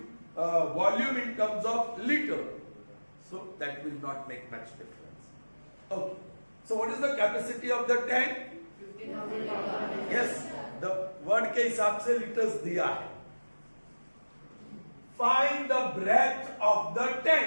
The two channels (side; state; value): both; inverted; correlation -1.00